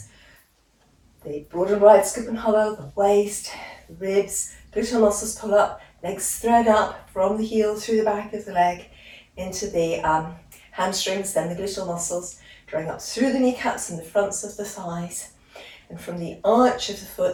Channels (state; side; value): identical; both; correlation 1.00